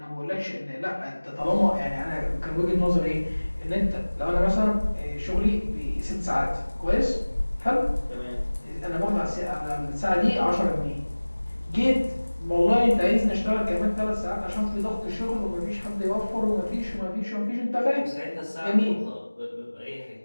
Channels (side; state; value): both; inverted; correlation -1.00